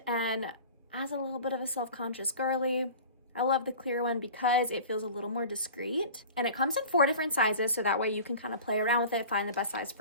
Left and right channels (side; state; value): both; inverted; correlation -0.39